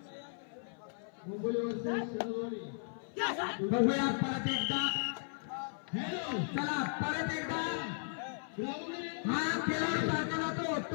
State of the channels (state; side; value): silent; right; 54 dB below the other